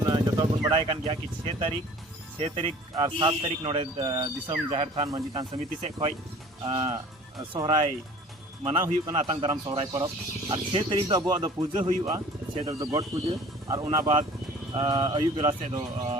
जतो बुन बड़ाय कान गया कि 6 तारीख और 7 तारीख नोडे दिसम झारतान मंजितान समिति से खय सोहराय मना हुई आतंग दाराम सोहराय परब और 6 तारीख दो अबुआ दो पूजा हुआ 6 तारीख दो गॉड पूजा और उना बाद अयुब बेला से दो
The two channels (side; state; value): both; normal; correlation 0.47